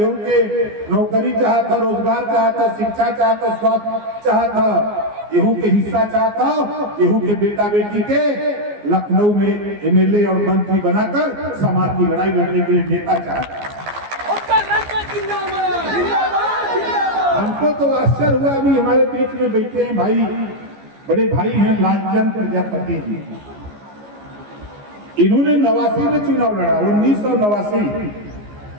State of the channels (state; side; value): late; left; 14 ms